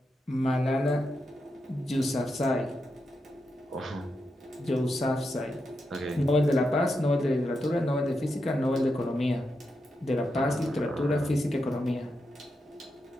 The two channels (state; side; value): normal; both; correlation 0.86